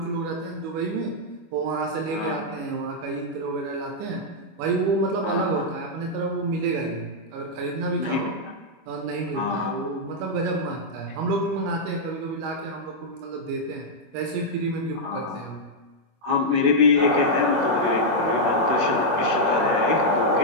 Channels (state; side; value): late; left; 25 ms